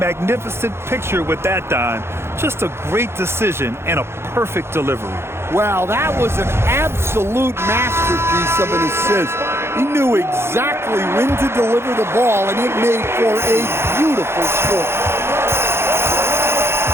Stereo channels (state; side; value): late; left; 0.12 ms